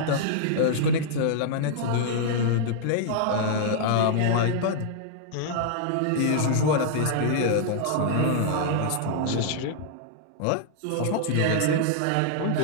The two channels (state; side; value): different; both; correlation -0.01